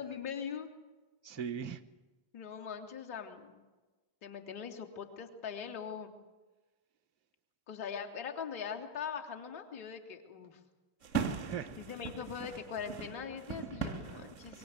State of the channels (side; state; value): right; late; 2.5 ms